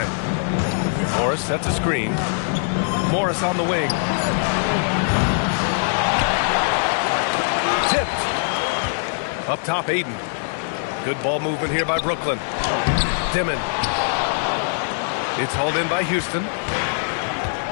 Morris sets a screen. Morris on the wing. Tipped. Up top, Aiden. Good ball movement here by Brooklyn. Dimon. It's hauled in by Houston.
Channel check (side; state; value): right; silent; 64 dB below the other